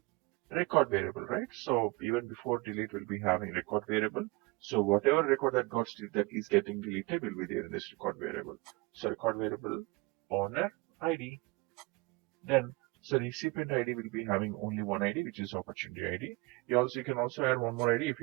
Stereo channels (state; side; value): quieter; left; 25.0 dB